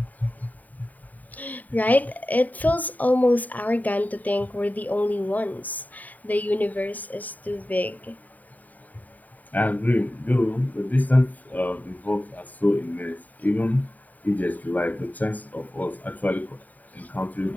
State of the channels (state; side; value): late; right; 0.078 ms